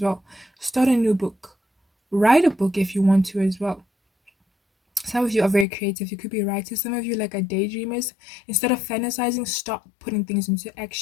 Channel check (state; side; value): drops out; right; at 5.7 s